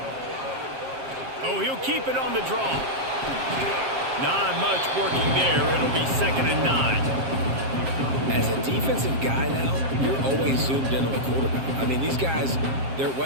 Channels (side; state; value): left; late; 7.5 ms